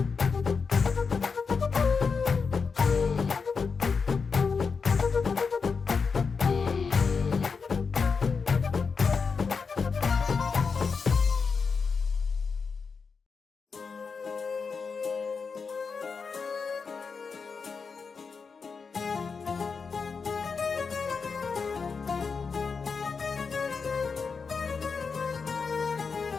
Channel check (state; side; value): quieter; right; 5.2 dB